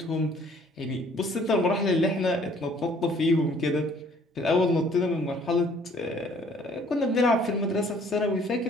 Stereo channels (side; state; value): both; normal; correlation 0.58